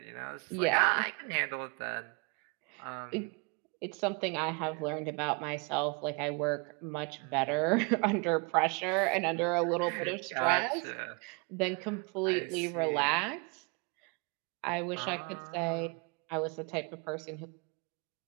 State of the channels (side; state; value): left; quieter; 32.3 dB